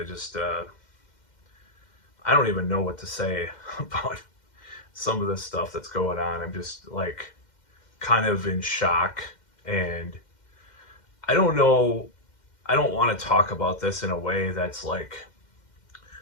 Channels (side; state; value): right; late; 2.1 ms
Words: just, I don't even know what to say about some of the stuff that's going on. I'm just like kind of in shock, and I don't know, I don't want to talk about this in a way that's like